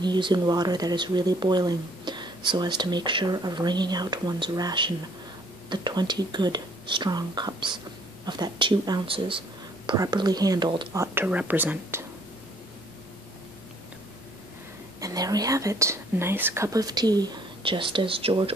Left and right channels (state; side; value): noise; right; hum, 30 dB below the sound